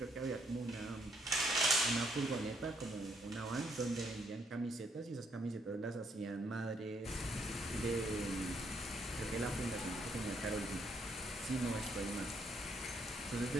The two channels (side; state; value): both; normal; correlation 0.71